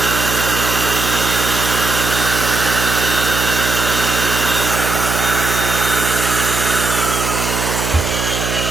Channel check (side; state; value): right; noise; hum, 3 dB below the sound